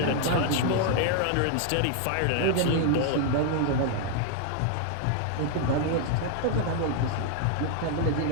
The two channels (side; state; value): both; different; correlation 0.00